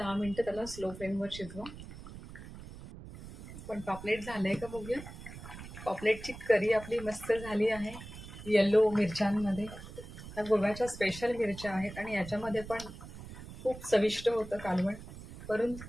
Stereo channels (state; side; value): noise; right; rumble, 13 dB below the sound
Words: मिनिटं त्याला स्लो फ्लेमवर शिजवा. पण पापलेट झालंय का बघूया. पापलेटची करी आपली मस्त झाली आहे येलो मिरच्यांमध्ये. ह्या गोव्याच्या स्पेशल मिरच्या आहेत आणि याच्यामध्ये पण खूप चविष्ट होतं कालवण. वरून